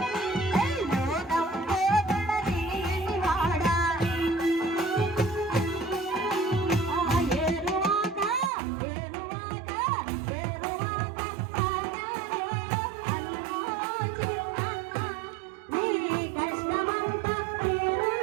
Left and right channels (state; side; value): drops out; left; at 8.5 s